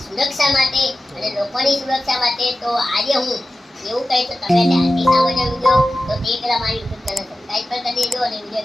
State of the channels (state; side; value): normal; both; correlation 0.94